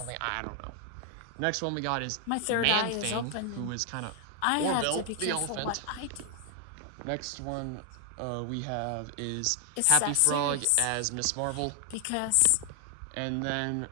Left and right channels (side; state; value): both; different; correlation 0.00